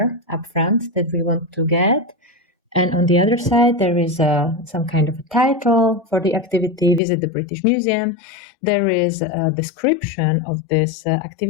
up front that we want to get. And on the other side, there is some kind of a title for the activity, visit the British Museum. There is a description of this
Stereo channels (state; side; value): drops out; right; at 7.0 s